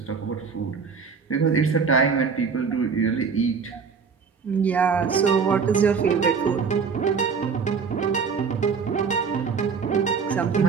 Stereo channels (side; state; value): left; quieter; 5.7 dB